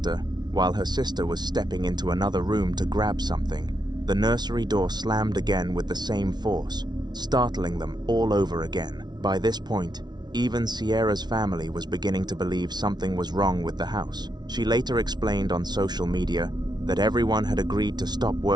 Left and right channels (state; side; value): late; left; 0.20 ms